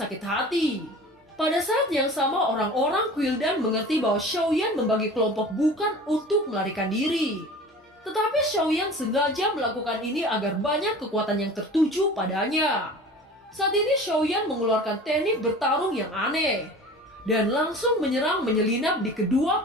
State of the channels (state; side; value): normal; both; correlation 0.40